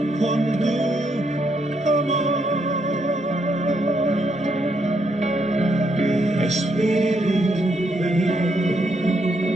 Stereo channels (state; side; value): normal; both; correlation 0.76